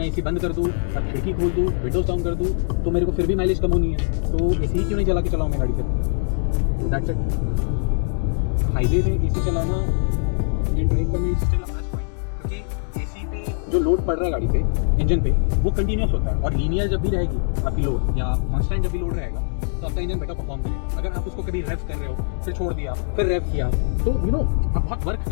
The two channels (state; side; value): silent; right; digital silence